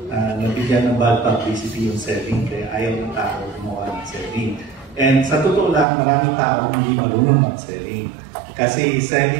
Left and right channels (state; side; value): drops out; left; at 5.9 s